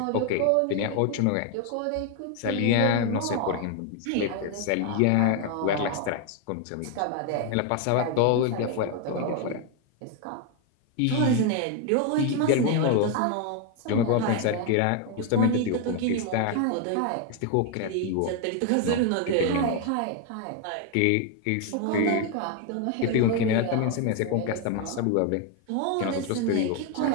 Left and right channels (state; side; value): different; both; correlation 0.01